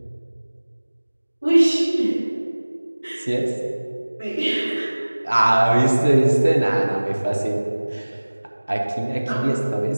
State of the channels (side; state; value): both; inverted; correlation -1.00